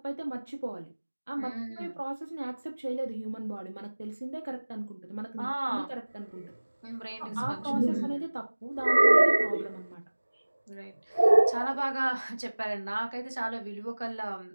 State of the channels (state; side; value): inverted; both; correlation -1.00